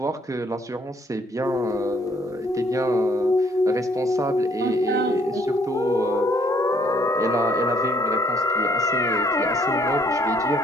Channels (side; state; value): both; normal; correlation 0.64